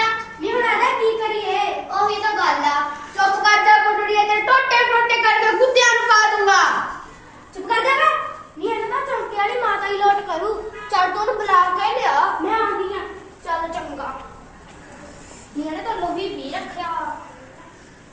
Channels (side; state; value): both; identical; correlation 1.00